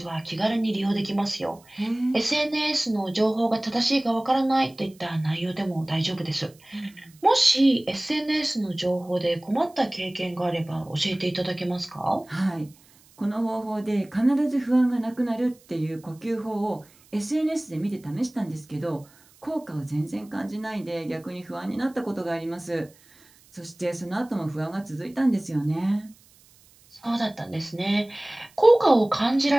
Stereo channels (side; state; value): right; noise; hiss, 28 dB below the sound